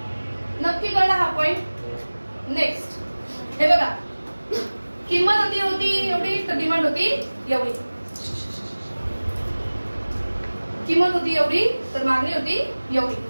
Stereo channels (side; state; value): both; inverted; correlation -1.00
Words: नक्की कळला हा पॉइंट. नेक्स्ट हे बघा, किंमत होती एवढी तर डिमांड होती एवढी. किंमत होती एवढी तर मागणी होती एवढी.